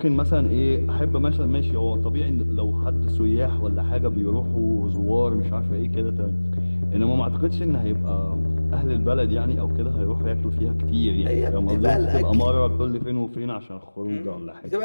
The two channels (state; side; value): inverted; both; correlation -1.00